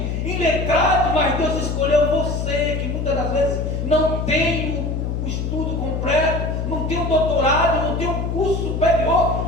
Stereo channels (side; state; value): left; noise; hum, 2 dB below the sound